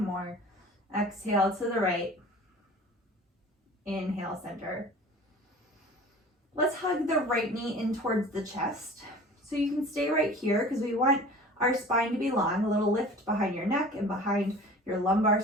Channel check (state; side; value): normal; both; correlation 0.42